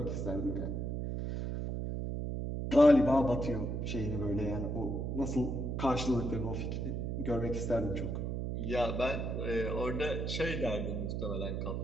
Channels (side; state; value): right; noise; hum, 2 dB below the sound